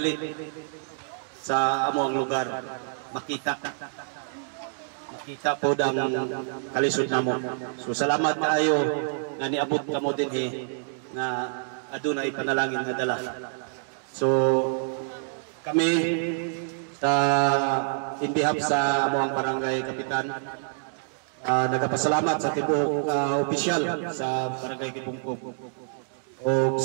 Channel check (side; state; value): left; silent; digital silence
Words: sa amo ang lugar makita po dang kalisod namo. So salamat kaayo nga niabot kamo dinhi nga adunay panalangin nga dala. So kami sa in behalf sa amo ang barangay kapitan, nagapasalamat sa tibuok opisyal sa barangay Kipungkog o